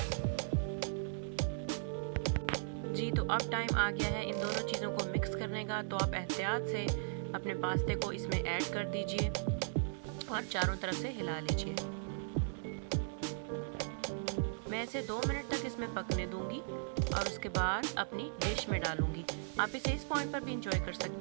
जी, तो अब टाइम आ गया है इन दोनों चीज़ों को मिक्स करने का। तो आप एहतियात से अपने पास्ते को इसमें ऐड कर दीजिए और चारों तरफ से हिला लीजिए। मैं इसे 2 मिनट तक इसमें पकने दूंगी और उसके बाद अपनी डिश में डालूंगी। आप इसे इस पॉइंट पर भी इंजॉय कर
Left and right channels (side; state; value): left; silent; 53 dB below the other